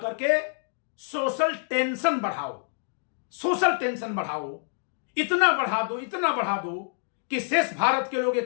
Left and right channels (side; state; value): right; silent; digital silence